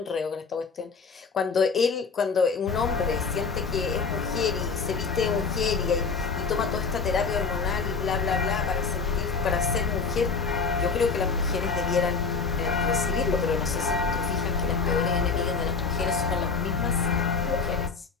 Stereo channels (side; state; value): right; quieter; 5.0 dB